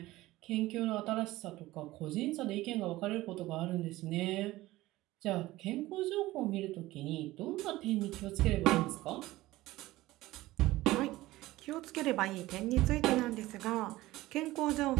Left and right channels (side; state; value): left; quieter; 17.6 dB